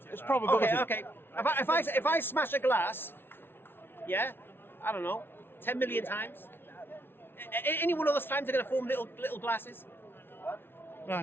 it's probability. Okay. If I smash a glass, yeah, I don't know, 10 million times. Any one of those times are going to form little glasses.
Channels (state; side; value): late; right; 0.11 ms